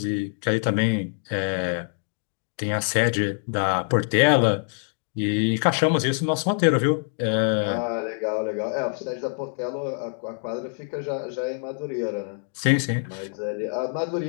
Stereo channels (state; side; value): silent; right; digital silence